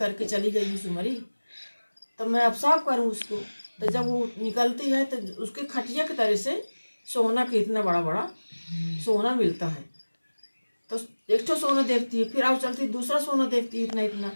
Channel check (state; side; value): inverted; both; correlation -1.00